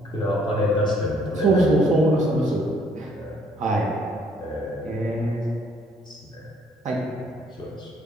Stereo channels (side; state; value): both; normal; correlation 0.64